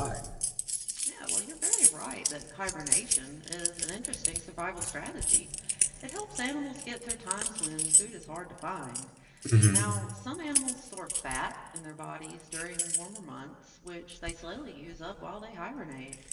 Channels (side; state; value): both; identical; correlation 1.00